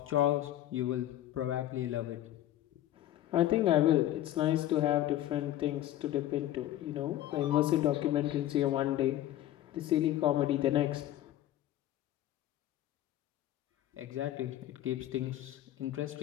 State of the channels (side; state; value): right; quieter; 13.1 dB